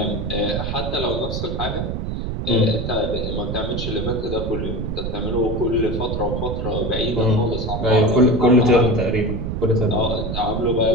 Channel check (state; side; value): noise; right; rumble, 3 dB below the sound